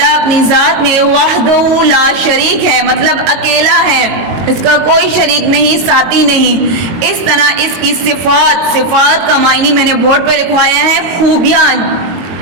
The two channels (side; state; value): left; late; 22 ms